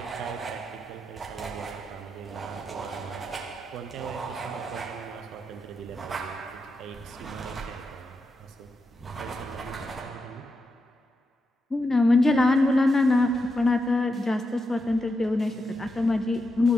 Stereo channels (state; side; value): normal; both; correlation 0.86